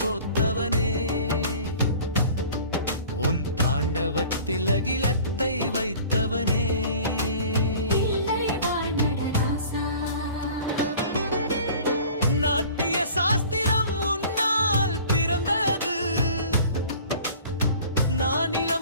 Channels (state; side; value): inverted; both; correlation -0.46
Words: கோத்தவனே, உன் தாண்டவத்தில் அகிலத்தை வைத்தவனே. நாட்டிய சாஸ்திரம் உன்னால் பிறந்தது,